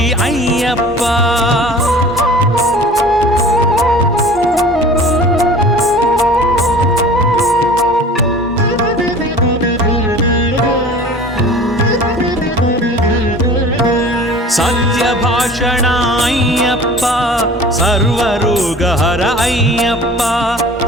అయ్యప్ప సత్యభాషణ అయ్యప్ప సర్వరోగహర అయ్యప్ప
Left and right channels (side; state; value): both; normal; correlation 0.43